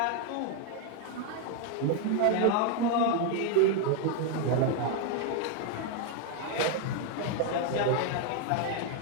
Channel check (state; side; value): different; both; correlation 0.00